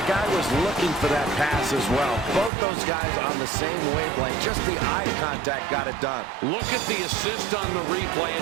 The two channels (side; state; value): left; drops out; at 2.5 s